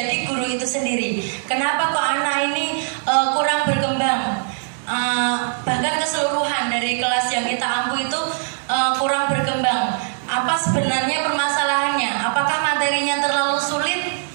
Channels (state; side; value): silent; left; digital silence